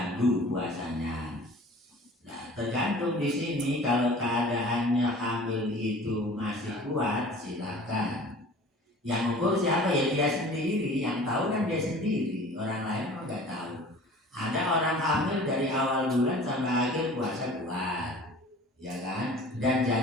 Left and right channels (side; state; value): both; normal; correlation 0.44